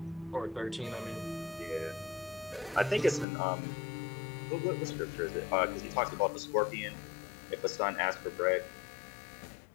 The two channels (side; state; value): right; drops out; at 3.2 s